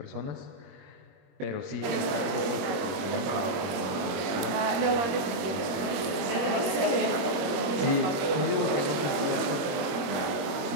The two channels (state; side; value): late; left; 21 ms